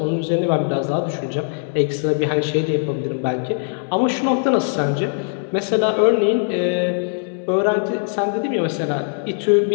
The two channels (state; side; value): silent; right; 65 dB below the other